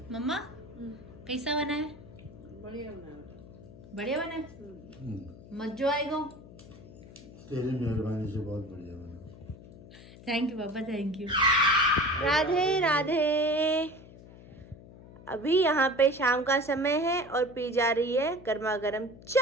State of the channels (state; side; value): noise; left; hum, 19 dB below the sound